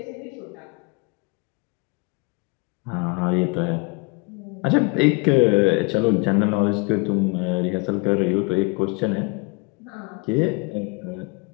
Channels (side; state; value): right; quieter; 29.2 dB